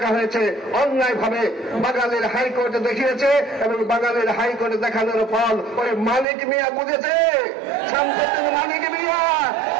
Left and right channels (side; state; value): left; drops out; at 6.2 s